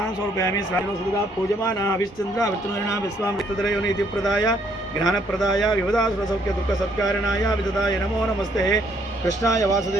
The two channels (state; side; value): normal; both; correlation 0.68